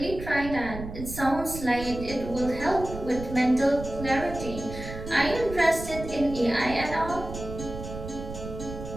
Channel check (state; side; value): noise; right; rumble, 10 dB below the sound